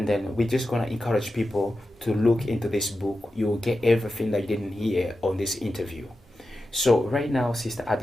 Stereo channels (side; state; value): both; normal; correlation 0.91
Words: then we're just going to encourage people to look into this book. You will get everything that you didn't hear on this interview. So right now, Sister